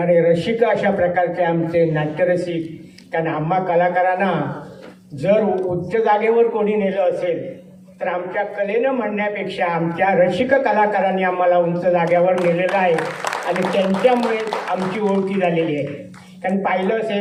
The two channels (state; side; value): identical; both; correlation 1.00